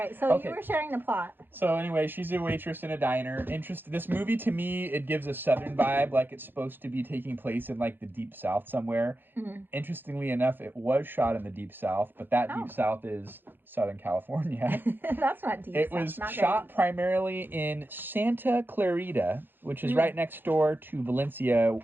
So you were sharing the plot. So anyway, she's a waitress in a diner. This movie, to me, it gives a Southern vibe, like it's supposed to be taking place in like the Deep South somewhere. Mm-hmm. Interestingly enough, it was shot in the Deep South, but that Deep South is Southern California. That's not deep. It was shot primarily in Santa Clarita, which is right next door to Valencia,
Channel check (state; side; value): late; left; 0.097 ms